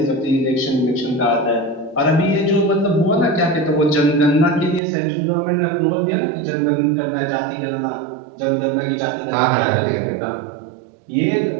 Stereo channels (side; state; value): left; drops out; at 4.8 s